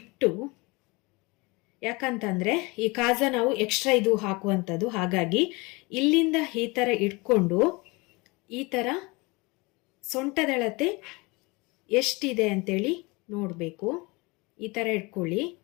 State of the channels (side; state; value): right; quieter; 25.7 dB